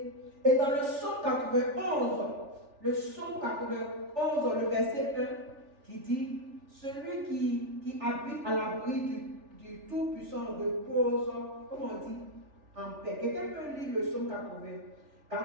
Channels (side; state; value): left; late; 3.4 ms